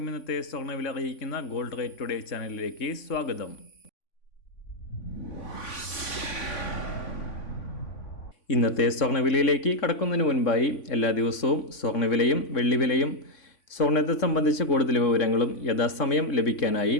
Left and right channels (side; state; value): right; late; 3.5 ms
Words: ഇന്നത്തെ സ്വർണ്ണവില അറിയിക്കുന്ന ഗോൾഡ് റേറ്റ് ടുഡേ ചാനലിലേക്ക് സ്വാഗതം. ഇന്നത്തെ സ്വർണ്ണവിലയിലേക്ക് കടക്കുന്നതിന് മുൻപായി എല്ലാ ദിവസവും സ്വർണ്ണവിലയും വെള്ളിവിലയും സ്വർണ്ണത്തെ സംബന്ധിച്ച് കൂടുതൽ വിവരങ്ങളും യഥാസമയം ലഭിക്കാനായി